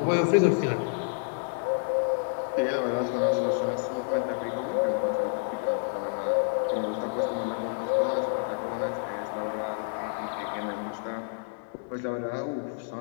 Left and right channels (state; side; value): silent; right; digital silence